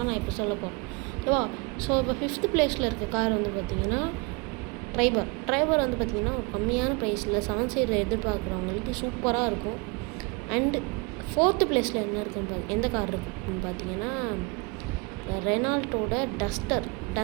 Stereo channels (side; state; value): left; quieter; 29.3 dB